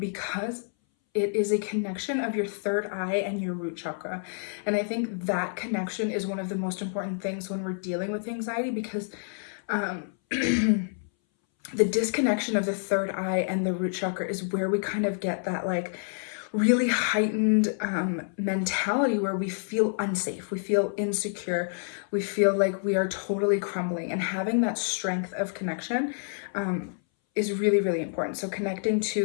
it is a connection of your third eye and your root chakra. And I think that connection is one of the most important things when we're dealing with anxiety, because the disconnection of the third eye and the root chakra is where we kind of get that like really heightened mentality where we feel unsafe, we feel insecure, we feel like we are totally crumbling. And having that strength of connection is really, really important. So connecting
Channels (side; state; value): right; silent; 59 dB below the other